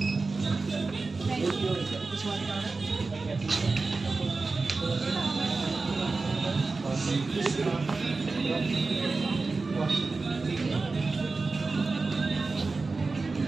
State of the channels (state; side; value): quieter; left; 3.9 dB